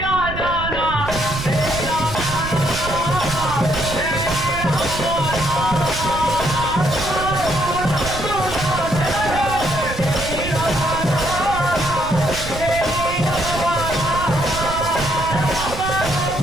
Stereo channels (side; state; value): right; noise; rumble, 8 dB below the sound